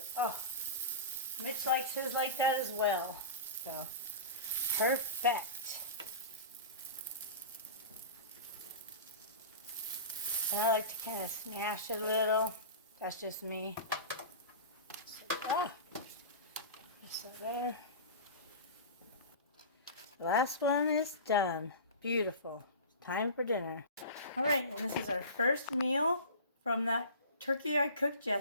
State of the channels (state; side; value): inverted; both; correlation -0.31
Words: Oh, Mitch likes his like that as well. So, perfect. And I like to kind of smash it a little. That's just me. So, just so there. The last one is done. Beautiful. It's time for dinner. All right, and this is our first meal from that turkey I cooked